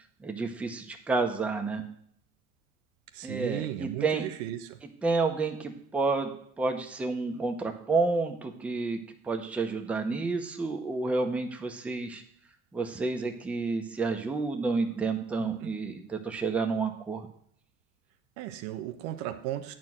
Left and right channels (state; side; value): quieter; left; 3.8 dB